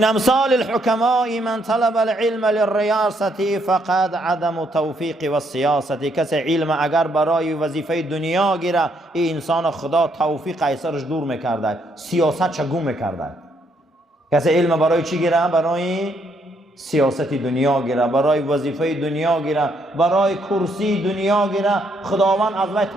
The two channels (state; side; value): normal; both; correlation 0.73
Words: امثال الحکماء من طلب العلم للریاست فقد عدم توفیق و سیاست. کسی علم اگر برای وظیفه دنیا گیره، این انسان خدا توفیق ایسرش دور میکرده، سیاست چگون میکرده. کسی علم برای چی گیره؟ برای سیاست دنیا گیره، برای وظیفه دنیا گیره، برای کرسی دنیا گیره، خداوند از وی